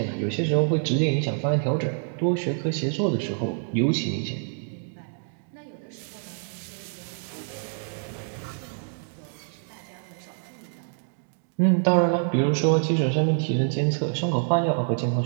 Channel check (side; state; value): left; silent; 61 dB below the other